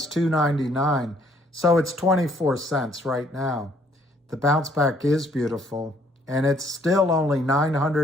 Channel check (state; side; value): normal; both; correlation 0.65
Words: $2.99, so it's 24 cents right now. The bounce back is beautiful, and it's still only